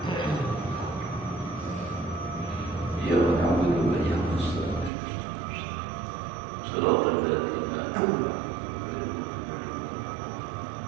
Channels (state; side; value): drops out; left; at 4.9 s